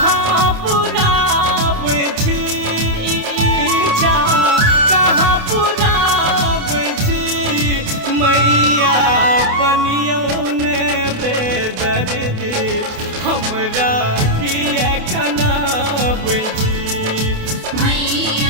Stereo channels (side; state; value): left; late; 28 ms